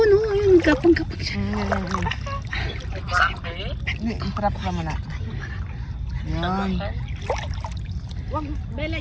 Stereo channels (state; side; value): identical; both; correlation 1.00